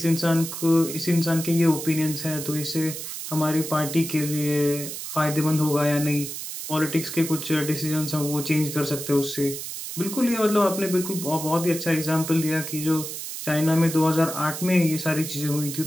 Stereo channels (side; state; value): right; noise; hiss, 7 dB below the sound